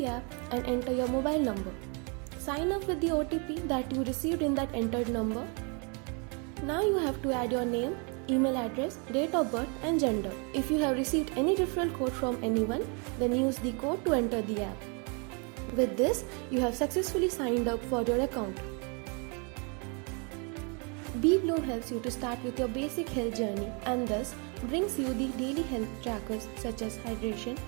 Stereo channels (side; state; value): left; quieter; 34.8 dB